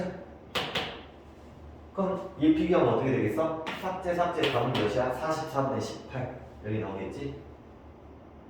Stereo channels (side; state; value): both; identical; correlation 1.00